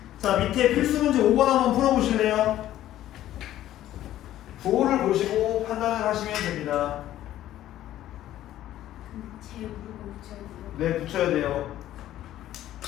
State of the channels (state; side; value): quieter; right; 13.2 dB